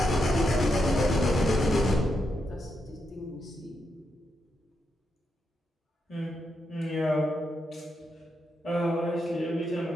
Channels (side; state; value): both; normal; correlation 0.83